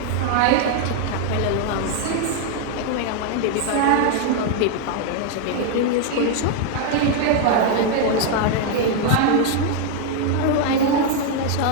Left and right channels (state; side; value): different; both; correlation 0.00